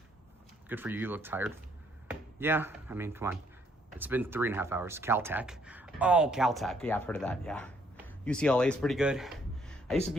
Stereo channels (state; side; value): normal; both; correlation 0.68